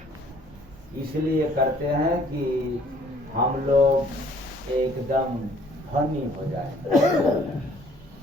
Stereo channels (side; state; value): both; normal; correlation 0.59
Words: इसलिए करते हैं कि हम लोग एकदम धनी हो जाए।